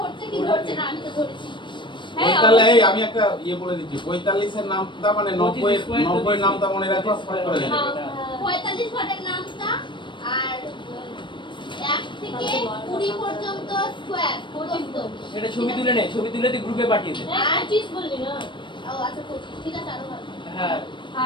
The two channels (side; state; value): right; late; 0.23 ms